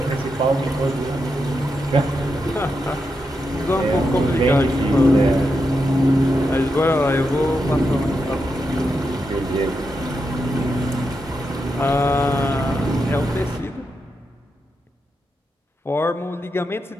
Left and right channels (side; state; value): both; normal; correlation 0.85